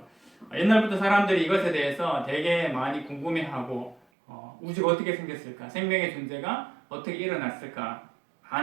옛날부터 사람들이 이것에 대해서 되게 많이 궁금해하고 우주가 어떻게 생겼을까, 생명의 존재가 어떻게 일어났을까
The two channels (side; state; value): left; drops out; at 4.0 s